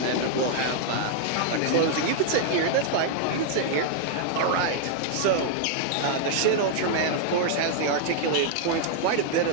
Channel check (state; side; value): different; both; correlation 0.00